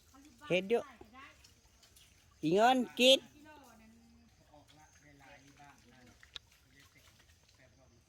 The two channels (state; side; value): identical; both; correlation 1.00